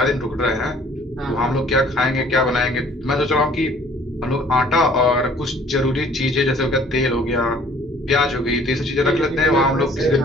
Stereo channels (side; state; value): both; normal; correlation 0.55